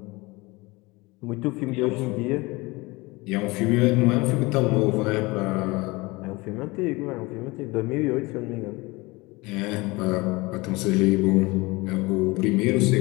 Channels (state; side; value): quieter; right; 23.4 dB